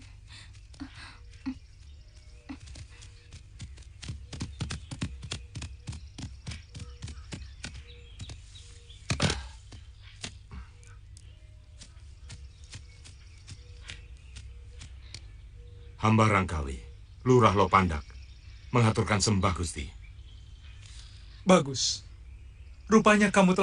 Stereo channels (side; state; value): both; identical; correlation 1.00